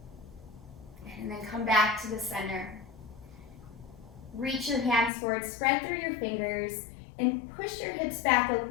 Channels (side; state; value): right; drops out; at 5.1 s